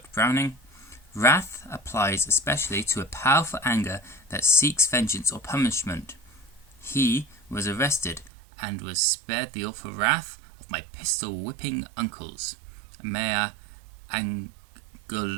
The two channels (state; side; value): drops out; left; at 8.3 s